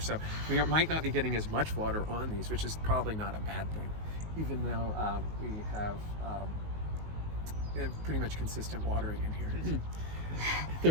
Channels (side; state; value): left; late; 19 ms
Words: So we might not be getting as much water on these, which is probably not a bad thing, even though we have pretty much consistent watering in here.